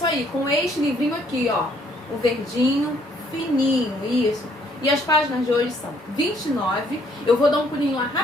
aí, com este livrinho aqui, ó, o verdinho, fininho, isso. E as páginas de hoje são 29, eu vou dar um pulinho lá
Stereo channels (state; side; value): normal; both; correlation 0.65